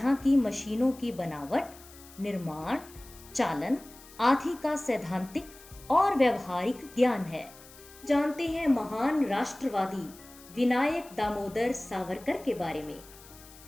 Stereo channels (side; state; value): left; noise; hiss, 21 dB below the sound